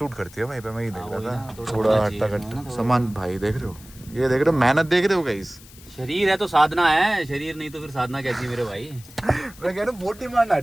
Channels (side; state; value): left; noise; hiss, 21 dB below the sound